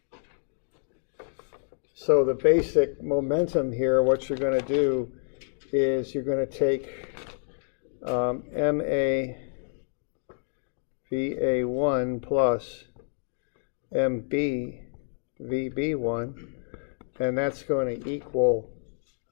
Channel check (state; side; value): silent; right; digital silence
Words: So the basic momentum here, what you're going to do is you're going to take MA VA1 plus MB VB1, and that's going to equal